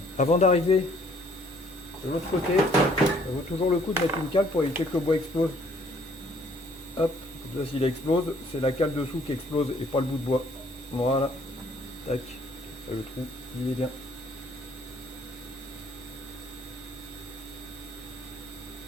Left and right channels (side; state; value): both; normal; correlation 0.61